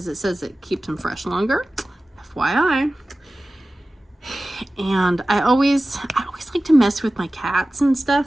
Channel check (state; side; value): normal; both; correlation 0.96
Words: it says it keeps them fresh longer. FYI. And I always like to mess with my cats and